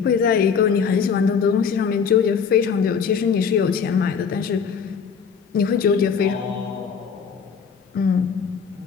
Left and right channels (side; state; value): right; quieter; 6.4 dB